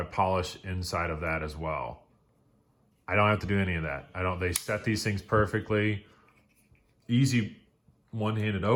polish inside of that as well. I don't have to do any of that. They set these things perfectly. Easy one-handed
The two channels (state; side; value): identical; both; correlation 1.00